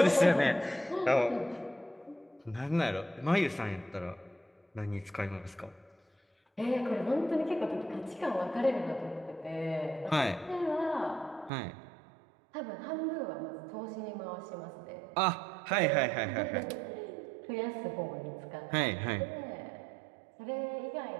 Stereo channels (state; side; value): drops out; left; at 11.5 s